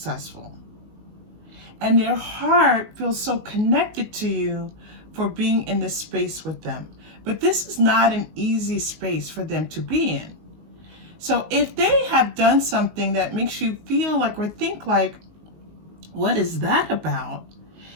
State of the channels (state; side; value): late; left; 19 ms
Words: And their heart feels so connected to you for being in this space with them. But this is not an easy space for them to be in. So if they have done something that makes you feel like or think like, what is that about?